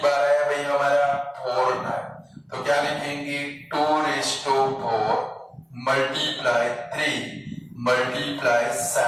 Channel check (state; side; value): identical; both; correlation 1.00